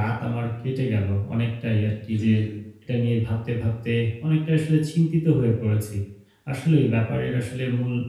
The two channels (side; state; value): both; identical; correlation 1.00